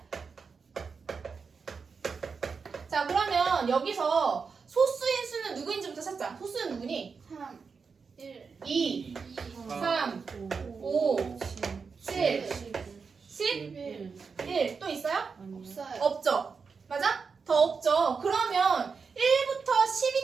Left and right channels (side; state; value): left; quieter; 5.3 dB